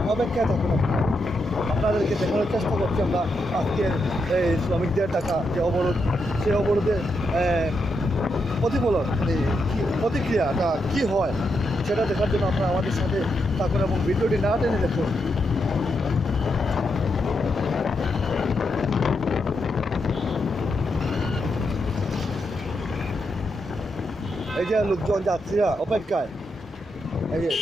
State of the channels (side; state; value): both; normal; correlation 0.83